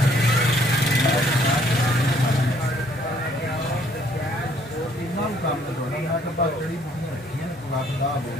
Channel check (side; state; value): both; normal; correlation 0.63